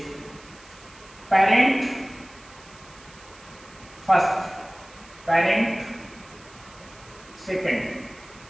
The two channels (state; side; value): noise; right; hiss, 23 dB below the sound